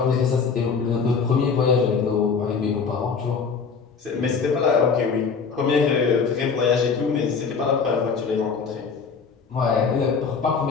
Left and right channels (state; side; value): quieter; right; 5.5 dB